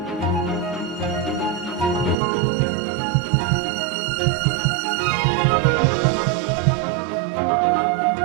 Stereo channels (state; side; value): drops out; left; at 2.1 s